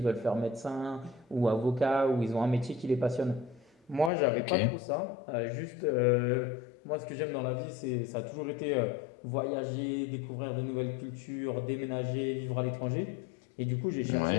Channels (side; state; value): right; drops out; at 4.1 s